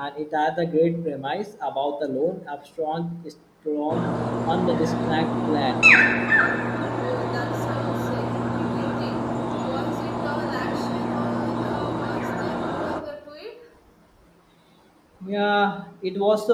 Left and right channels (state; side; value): identical; both; correlation 1.00